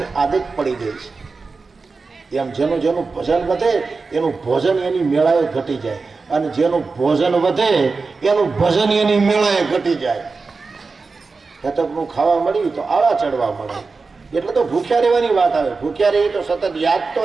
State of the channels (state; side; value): quieter; left; 4.3 dB